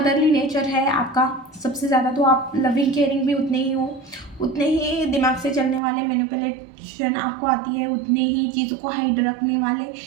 नेचर है आपका सबसे ज़्यादा। तो आप लविंग केयरिंग भी उतने ही हो, उतने ही दिमाग से चलने वाले, मैनिपुलेशन आपको आती है, उतने ही चीज़ों को हाइड रखने वाले,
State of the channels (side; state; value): left; drops out; at 5.8 s